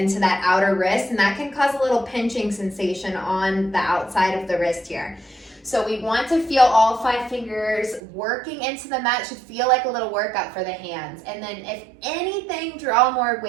that outer wrist, and that can cause a little pinching sensation on the outside of the wrist here. So we want to feel all 5 fingers working into the mat. Should feel like a little workout for the hands. And then if anything, draw more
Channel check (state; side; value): drops out; left; at 8.0 s